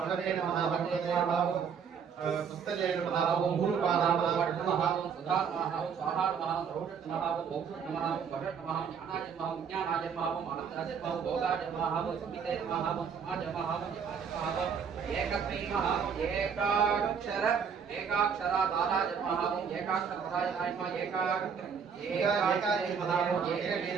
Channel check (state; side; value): quieter; left; 6.7 dB